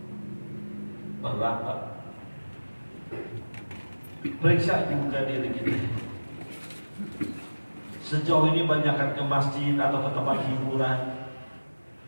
berat Pak. Periksa juga diri kita. Sejauh ini banyakkan ke masjid atau ke tempat hiburan.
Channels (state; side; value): inverted; both; correlation -1.00